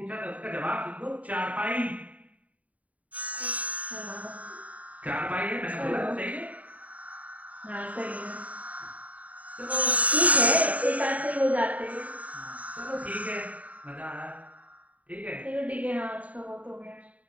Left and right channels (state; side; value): late; left; 0.070 ms